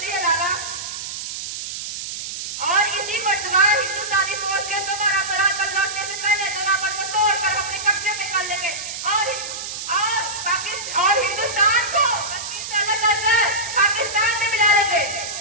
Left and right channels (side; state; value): right; noise; hiss, 7 dB below the sound